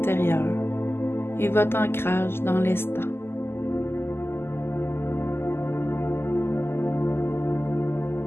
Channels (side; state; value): right; late; 0.12 ms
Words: et votre ancrage dans l'instant.